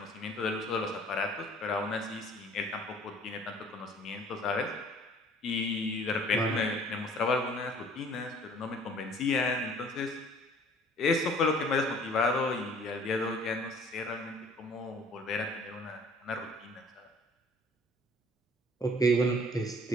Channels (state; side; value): normal; both; correlation 0.53